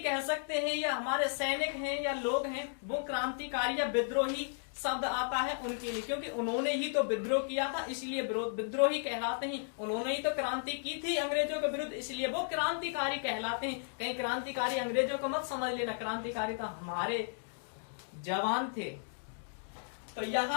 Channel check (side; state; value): right; silent; digital silence